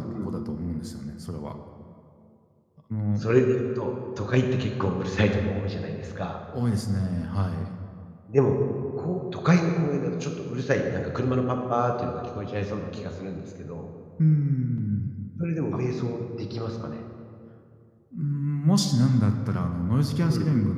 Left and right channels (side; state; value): both; identical; correlation 1.00